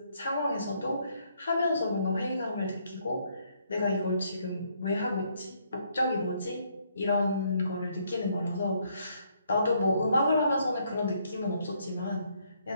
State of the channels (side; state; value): both; inverted; correlation -0.70